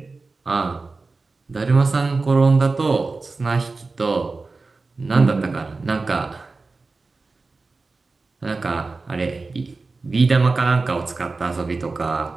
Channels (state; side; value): quieter; left; 3.8 dB